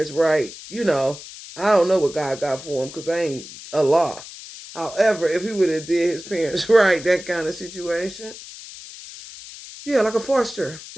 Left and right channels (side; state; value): left; noise; hiss, 15 dB below the sound